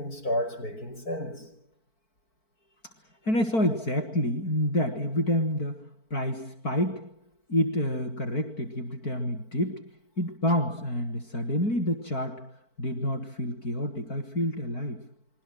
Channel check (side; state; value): right; late; 4.5 ms